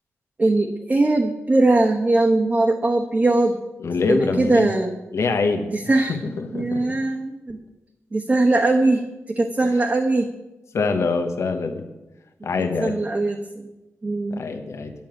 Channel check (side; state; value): both; normal; correlation 0.90